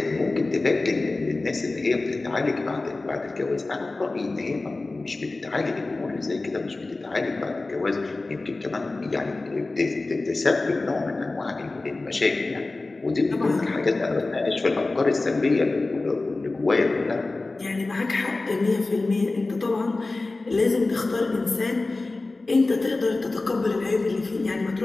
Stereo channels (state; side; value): quieter; right; 3.3 dB